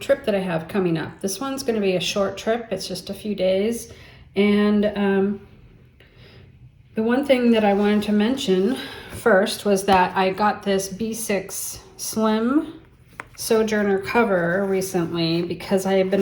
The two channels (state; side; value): identical; both; correlation 1.00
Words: that I have coming up. This one's going to be a short trip. It's just a few days. And the one thing that I wanted to mention first was that I got this B6 Slim Sojourner cover recently because I have